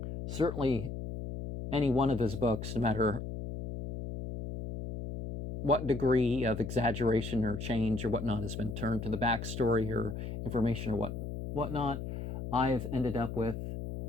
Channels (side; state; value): left; noise; hum, 6 dB below the sound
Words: Certainly any one of his books, no matter what degree of exaggeration or change or whatnot has been turned to the backstory or information or whatnot, I've ended up with,